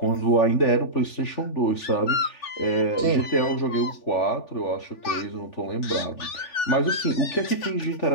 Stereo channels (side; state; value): right; late; 3.4 ms